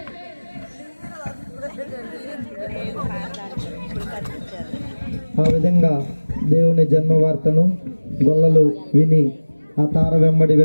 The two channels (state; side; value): inverted; both; correlation -1.00